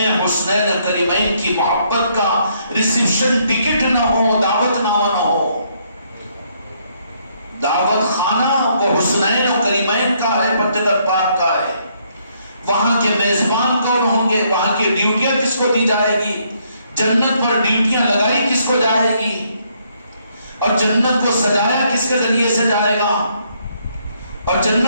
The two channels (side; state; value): both; inverted; correlation -0.71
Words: حسنین کریمین کی محبت کا ریسیپشن ٹکٹ نہ ہو، دعوت نامہ نہ ہو۔ دعوت خانہ وہ حسنین و کریمین کا ہے، پنجتن پاک کا ہے۔ وہاں کے میزبان کون ہوں گے، وہاں کی ڈیوٹیاں کس کو دی جائے گی، جنت پر ڈیوٹیاں لگائی کس کو جائے گی، اور جنت کو سجایا کس کے ذریعے سے جائے گا، اور